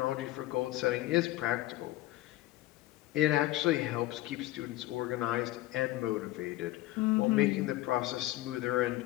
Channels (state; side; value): quieter; right; 16.8 dB